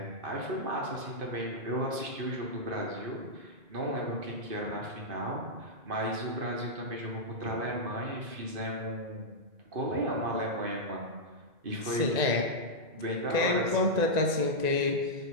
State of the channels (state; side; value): late; left; 1.9 ms